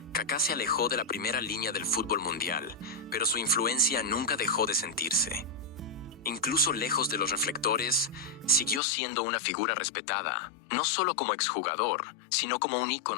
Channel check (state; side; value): drops out; right; at 8.8 s